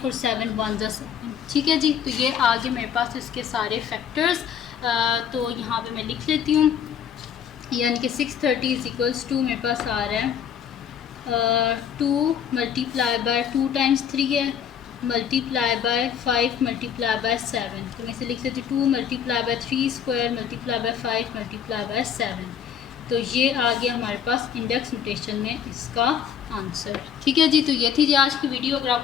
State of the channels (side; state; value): right; quieter; 8.3 dB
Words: और 7 1 ज़ा 7। ठीक है जी, तो ये आगे मेरे पास इसके सारे फैक्टर्स। तो यहाँ पे मैं लिख लेती हूँ, यानी कि 630 इज इक्वल्स टू मेरे पास आ रहा है 2 मल्टीप्लाई बाय 2 टाइम्स 3 है, मल्टीप्लाई बाय 5 मल्टीप्लाई बाय 7। तो मैं इसे लिख लेती हूँ 2 multiply by 3 square multiply by 5 multiply by 7। तो ये आ गया हमारे पास इंडेक्स नोटेशन में इसका आंसर। ठीक है जी, तो ये थी जी आज की वीडियो। अगर